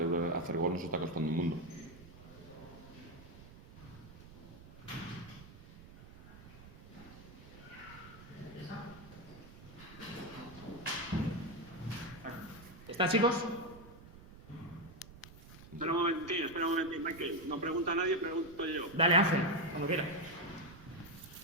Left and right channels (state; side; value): noise; right; rumble, 18 dB below the sound